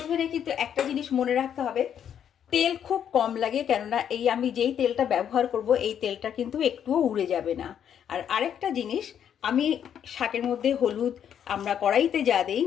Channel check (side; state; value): right; quieter; 9.0 dB